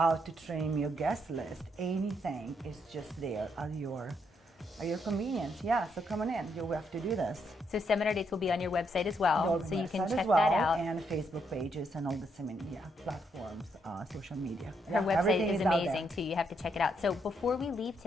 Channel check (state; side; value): normal; both; correlation 0.76